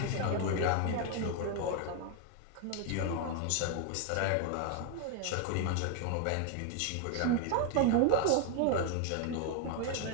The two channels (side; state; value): both; different; correlation 0.00